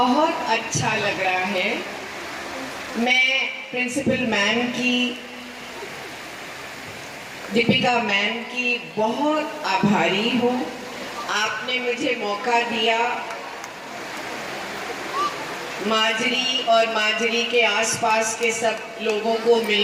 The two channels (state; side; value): identical; both; correlation 1.00